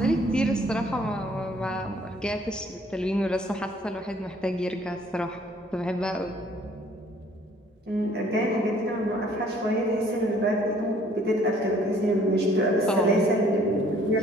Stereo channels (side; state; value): both; normal; correlation 0.59